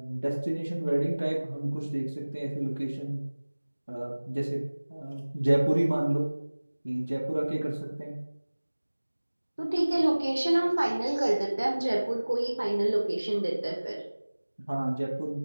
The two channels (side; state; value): both; inverted; correlation -1.00